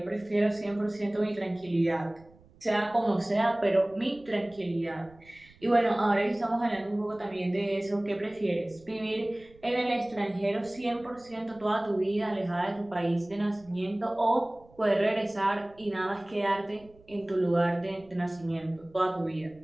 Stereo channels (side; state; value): right; noise; rumble, 26 dB below the sound